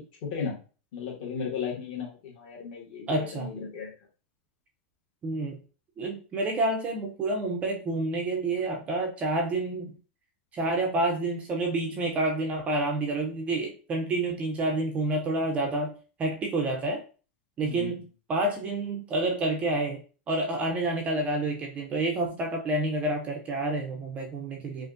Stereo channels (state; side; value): normal; both; correlation 0.07